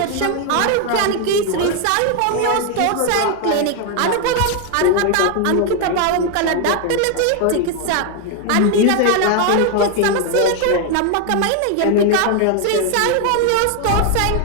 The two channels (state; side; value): different; both; correlation 0.01